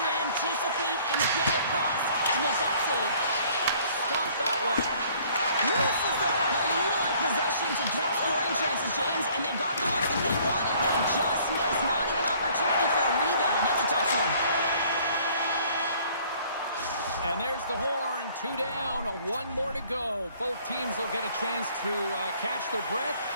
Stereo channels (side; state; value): both; inverted; correlation -0.57